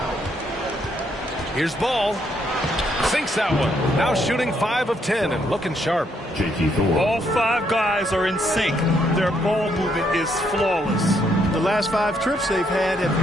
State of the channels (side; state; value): both; normal; correlation 0.73